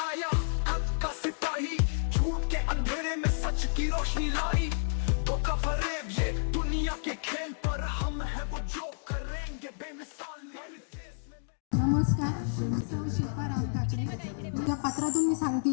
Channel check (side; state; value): right; silent; digital silence